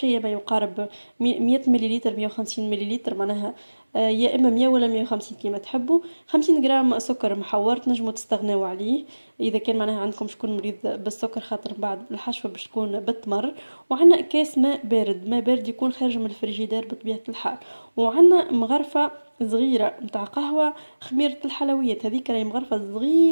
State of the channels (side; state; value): both; inverted; correlation -1.00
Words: ما يقارب 100 مليلتر، 150 مليلتر معناها. يا اما 100 ولا 150 كيما تحبوا. 50 غرام سكر محور تنجموا تستغناو عليه اذا كان معناها عندكم شكون مريض بالسكر، خاطر بعد الحشوه باش تكون بالتمر. وعندنا كاس ماء بارد، ماء بارد يكون خارج من الفريجيدير بطبيعه الحال. وعندنا مغرفه صغيره متاع قهوه، خميرة الحلويات هذيك راهي مغرفة